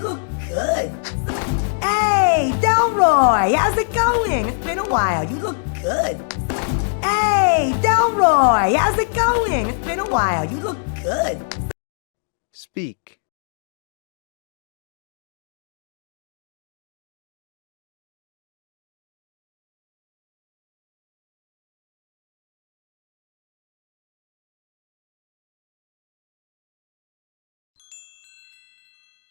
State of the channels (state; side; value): silent; right; digital silence